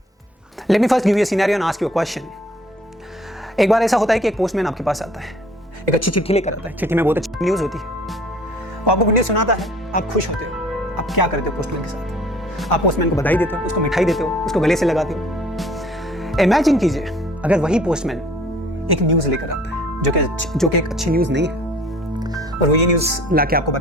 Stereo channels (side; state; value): both; normal; correlation 0.53